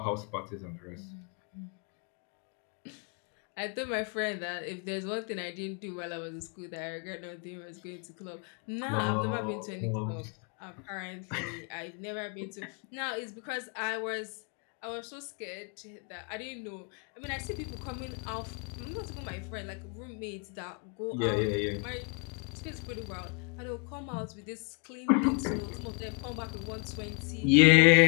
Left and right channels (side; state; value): right; quieter; 37.0 dB